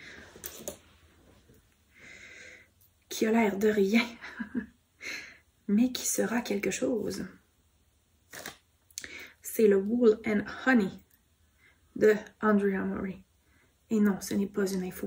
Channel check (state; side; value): identical; both; correlation 1.00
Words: Qui a l'air de rien. Mais qui sera quelque chose. C'est le Wool and Honey de Andrea Mori. Et non, ce n'est pas une info